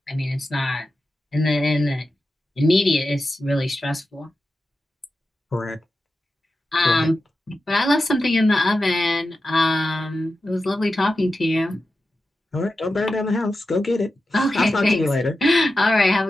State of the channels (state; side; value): normal; both; correlation 0.91